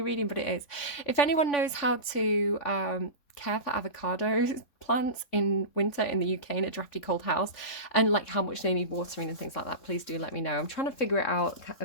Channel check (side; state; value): right; late; 3.5 ms